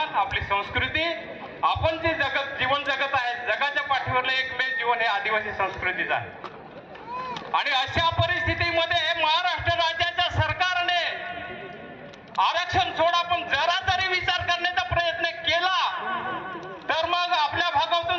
आपली संस्कृती, आपण जे जीवन जगत आहे, जगाच्या पाठीवरलं एकमेव जीवन हे आदिवासी संस्कृतीचं आहे। आणि अशा परिस्थितीमध्ये महाराष्ट्र राज्याच्या सरकारने आरक्षण सोडा पण जरा तरी विचार करण्याचा प्रयत्न केला तर मग आपल्या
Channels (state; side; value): identical; both; correlation 1.00